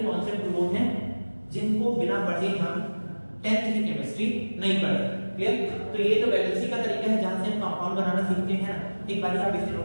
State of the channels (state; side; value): inverted; both; correlation -1.00